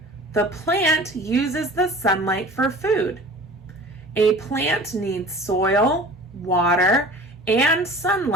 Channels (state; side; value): normal; both; correlation 0.42